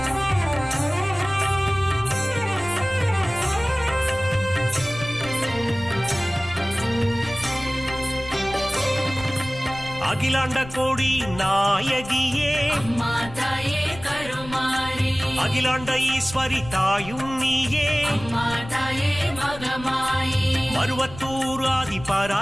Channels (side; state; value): left; noise; rumble, 15 dB below the sound